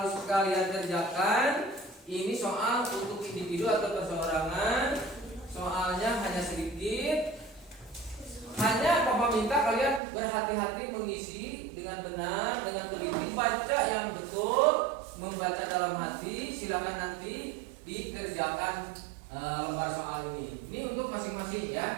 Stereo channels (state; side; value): drops out; left; at 10.0 s